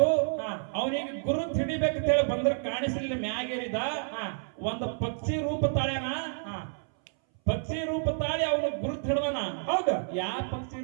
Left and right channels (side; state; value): left; silent; 58 dB below the other